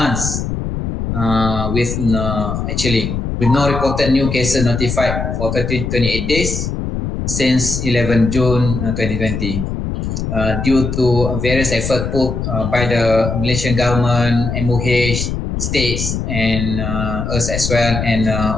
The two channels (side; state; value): left; noise; rumble, 3 dB below the sound